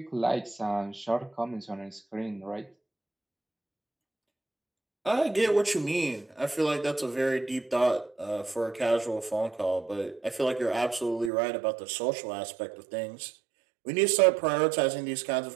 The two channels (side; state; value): left; drops out; at 11.3 s